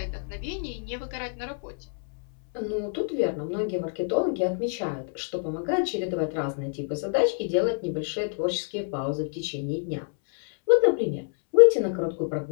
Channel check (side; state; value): right; silent; 60 dB below the other